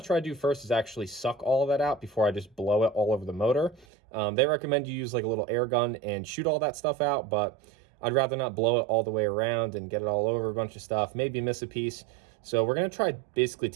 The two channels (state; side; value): drops out; left; at 3.9 s